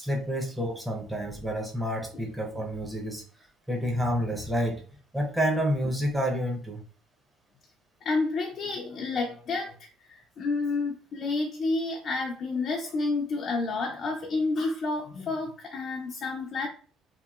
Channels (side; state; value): both; normal; correlation 0.72